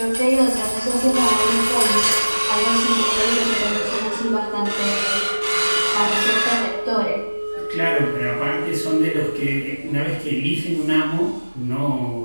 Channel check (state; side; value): inverted; both; correlation -1.00